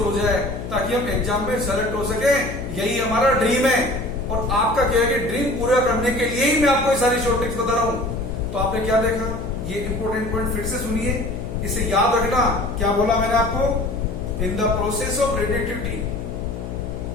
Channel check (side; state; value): left; noise; hum, 8 dB below the sound